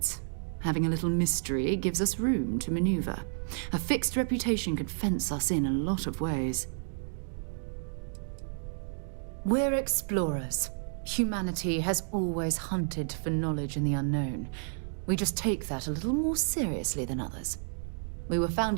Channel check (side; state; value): left; silent; digital silence